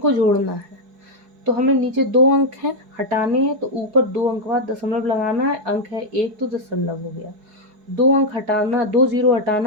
जोड़ना है। तो हमें नीचे 2 अंक हैं, हटाने हैं, तो ऊपर 2 अंक बाद दशमलव लगाना है। अंक है 1 तो दशमलव हो गया, 2 अंक हटाना, 2 जीरो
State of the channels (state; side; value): late; left; 4.7 ms